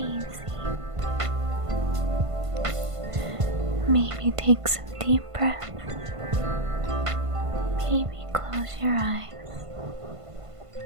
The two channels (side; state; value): left; late; 1.5 ms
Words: Maybe take some deep breaths. Maybe close your eyes.